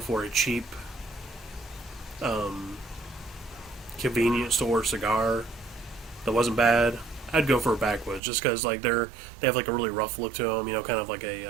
a cheap convenience store cigar that wasn't bad, I'd go for a Backwoods, just because like they have like a really rough look to them, kind of like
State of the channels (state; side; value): drops out; left; at 8.2 s